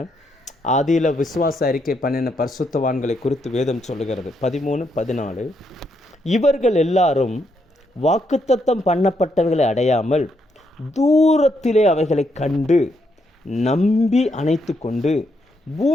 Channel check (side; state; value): both; normal; correlation 0.77